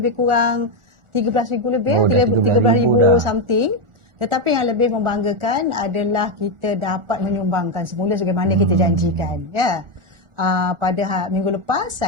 kurang 13,000 lebih, 13,000 something. Tetapi yang lebih membanggakan adalah kita dapat menyumbangkan semula sebagaimana kita janjikan. Pada minggu lepas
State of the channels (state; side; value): late; left; 1.4 ms